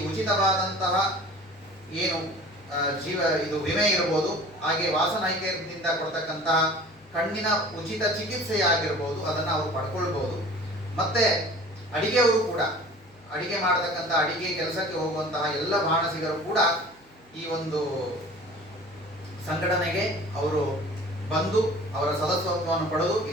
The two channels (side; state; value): both; normal; correlation 0.44